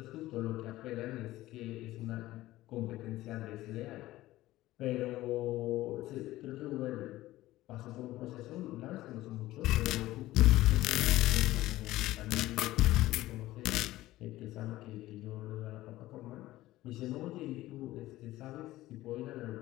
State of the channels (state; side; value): quieter; right; 16.5 dB